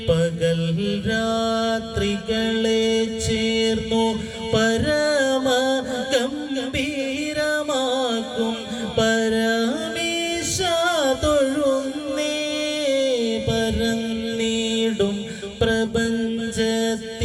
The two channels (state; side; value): identical; both; correlation 1.00